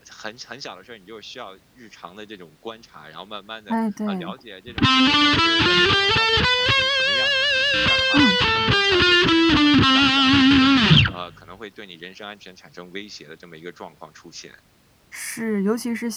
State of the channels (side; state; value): both; identical; correlation 1.00